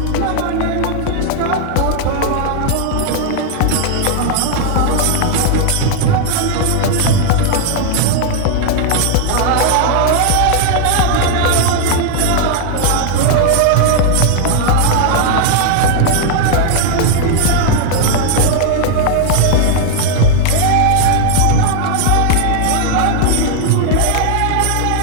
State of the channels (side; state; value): both; different; correlation 0.00